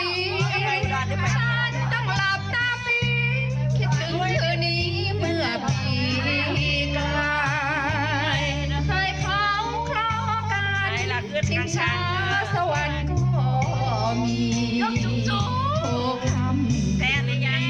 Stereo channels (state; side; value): identical; both; correlation 1.00